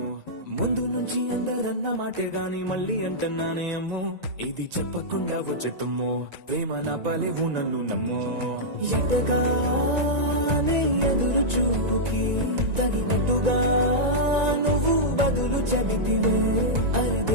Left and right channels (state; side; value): late; left; 1.9 ms